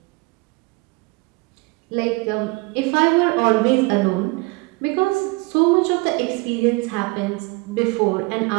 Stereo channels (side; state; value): left; quieter; 26.2 dB